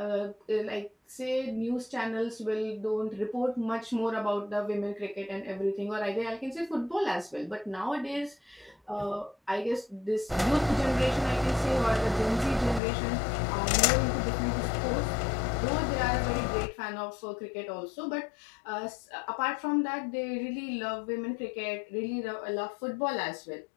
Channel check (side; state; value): right; drops out; at 12.8 s